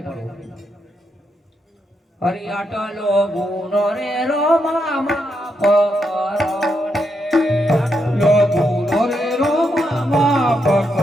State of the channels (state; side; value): normal; both; correlation 0.81